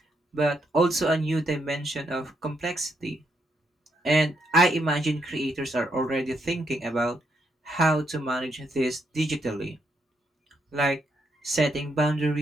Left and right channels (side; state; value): both; normal; correlation 0.78